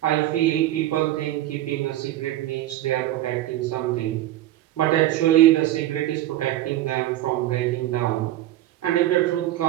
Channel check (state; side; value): quieter; left; 14.3 dB